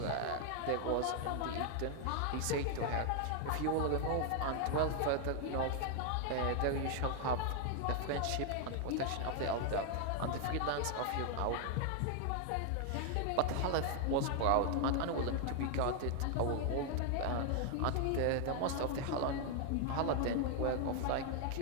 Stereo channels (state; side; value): different; both; correlation 0.00